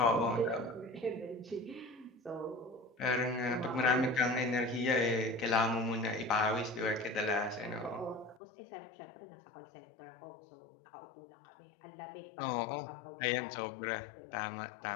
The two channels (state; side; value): drops out; right; at 8.4 s